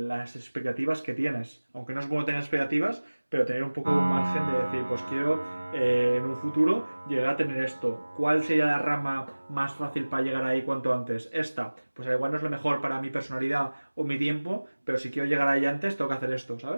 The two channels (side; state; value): both; inverted; correlation -1.00